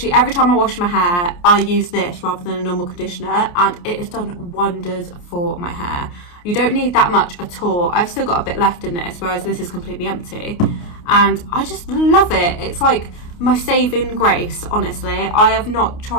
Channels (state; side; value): late; right; 29 ms